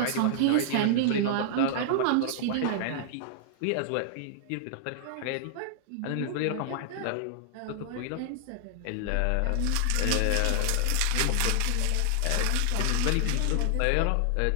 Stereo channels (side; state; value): both; different; correlation -0.01